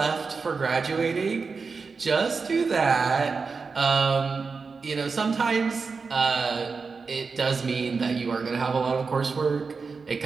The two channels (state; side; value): quieter; left; 4.8 dB